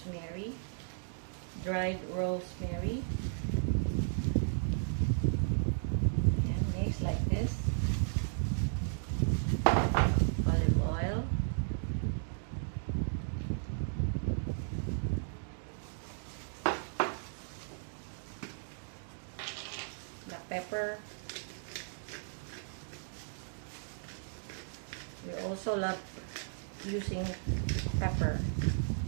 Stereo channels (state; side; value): silent; left; digital silence